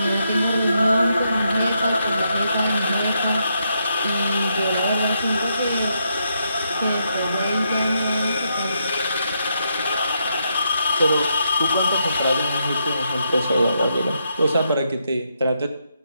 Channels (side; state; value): both; inverted; correlation -0.79